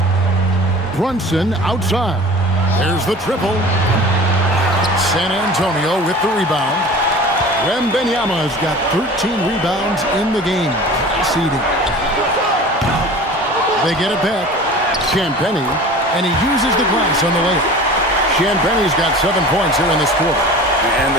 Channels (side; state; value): both; normal; correlation 0.40